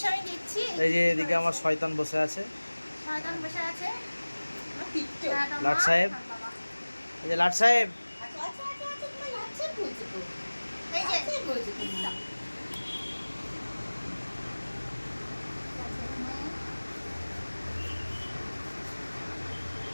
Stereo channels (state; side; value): inverted; both; correlation -1.00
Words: আমি দেখছি। এই যে এদিকে আমার শয়তান বসে আছে, শয়তান বসে আছে লাট সাহেব। এই যে লাট সাহেব, এই যে